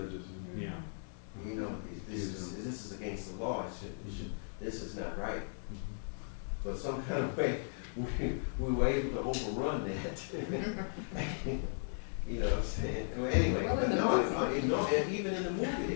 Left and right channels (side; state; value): right; silent; digital silence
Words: Yeah. You know, this is against the law. This is not right. But some kind of way, we were able to overrun that. You know what I'm saying? Well, anyway, Well, but in the no, and even in the movie